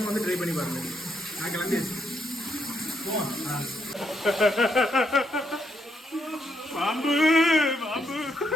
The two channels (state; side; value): normal; both; correlation 0.77